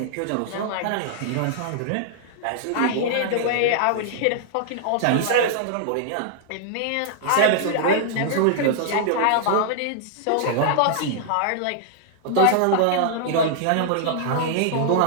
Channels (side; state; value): both; different; correlation -0.01